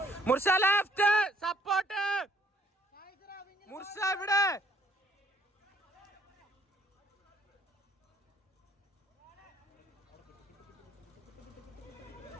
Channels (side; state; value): both; normal; correlation 0.64